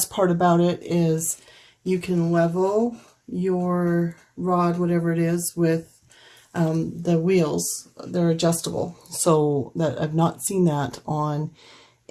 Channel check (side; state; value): both; identical; correlation 1.00